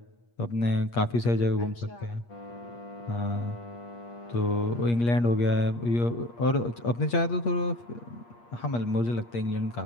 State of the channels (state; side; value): late; right; 8.5 ms